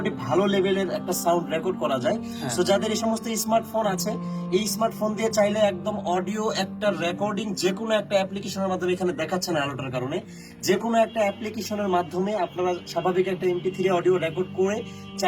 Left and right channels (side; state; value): both; identical; correlation 1.00